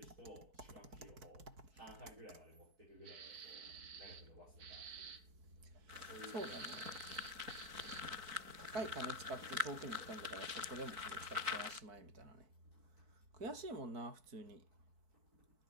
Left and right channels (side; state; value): left; late; 4.5 ms